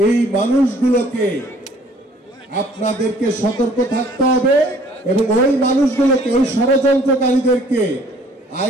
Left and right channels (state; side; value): normal; both; correlation 0.57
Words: এই মানুষগুলোকে আপনাদেরকে সতর্ক থাকতে হবে এবং ওই মানুষগুলোকে, ওই ষড়যন্ত্রকারীদেরকে